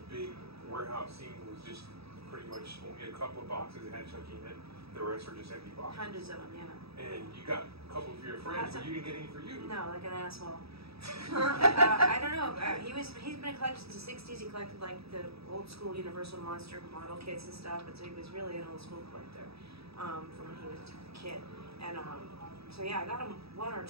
big warehouse scene was just pretty much only a couple of boxes that had Chucky in it. The rest were just empty boxes. Hundreds of them, yeah. And you got a couple for your friends, but you didn't get any for you. No, like an asshole. I don't know. He's been a collector since the '60s. He collected like the old school Universal Monster model kits and stuff. But so he was really an old school collector from when he was a kid. And so yeah, I got him one or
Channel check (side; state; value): left; late; 0.77 ms